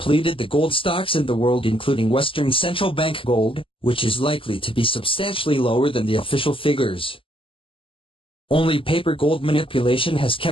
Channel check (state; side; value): late; right; 0.25 ms